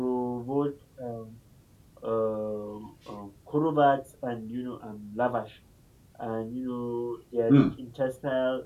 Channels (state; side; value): identical; both; correlation 1.00